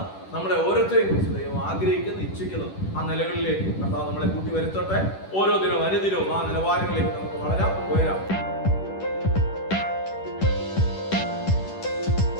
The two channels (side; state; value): right; late; 10 ms